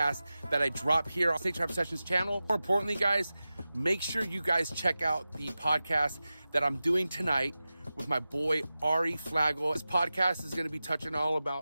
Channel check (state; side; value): inverted; both; correlation -0.94